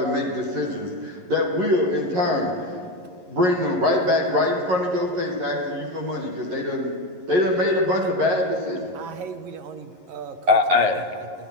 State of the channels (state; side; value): late; left; 11 ms